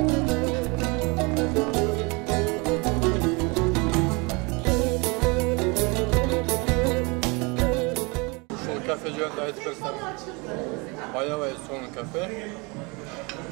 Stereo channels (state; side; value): quieter; left; 28.6 dB